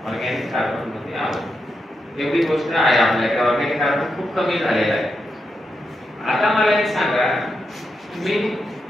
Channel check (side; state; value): both; normal; correlation 0.85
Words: ऑर्गॅनिक कार्बन मध्ये आहोत. एवढी गोष्ट आहे आपल्याकडे. ऑर्गॅनिक कार्बन खूप कमी झालेला आहे. आता मला एक सांगा, मी